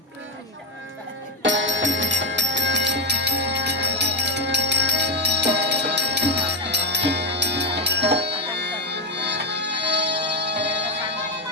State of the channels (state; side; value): normal; both; correlation 0.08